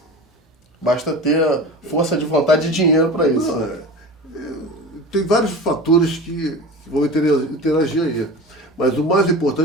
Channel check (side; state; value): both; normal; correlation 0.33